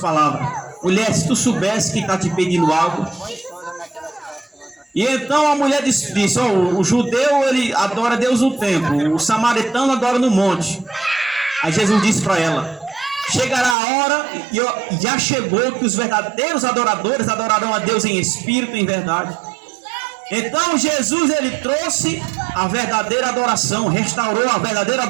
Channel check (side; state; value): left; drops out; at 13.8 s